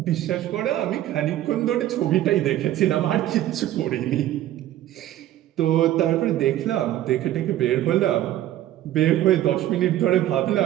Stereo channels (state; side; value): quieter; left; 13.2 dB